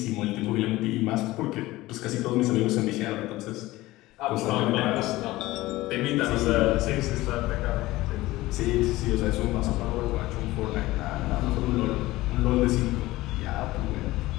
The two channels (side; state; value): right; quieter; 18.2 dB